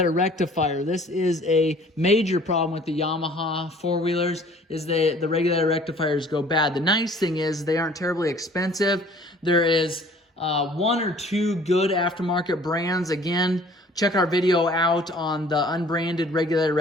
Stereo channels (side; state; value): both; normal; correlation 0.53